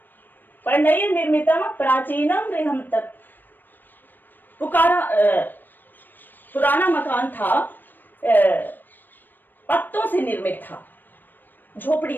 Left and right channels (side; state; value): right; late; 0.092 ms